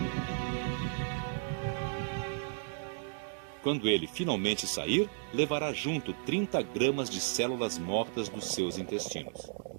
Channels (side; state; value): left; silent; digital silence